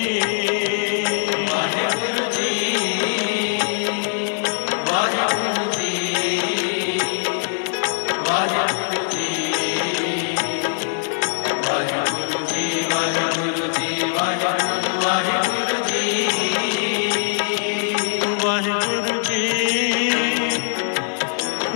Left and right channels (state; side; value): silent; right; digital silence